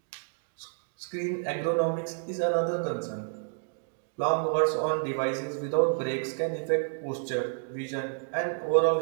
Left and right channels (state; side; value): silent; left; digital silence